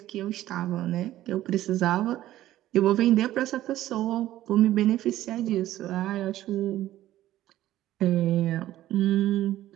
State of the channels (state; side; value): quieter; left; 14.1 dB